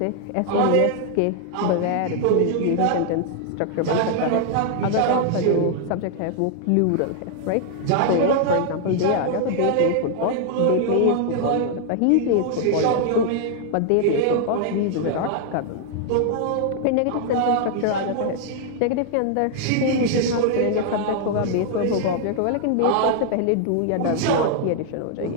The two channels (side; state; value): both; different; correlation 0.00